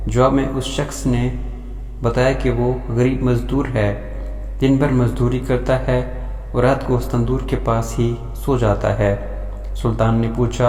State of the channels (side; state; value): both; identical; correlation 1.00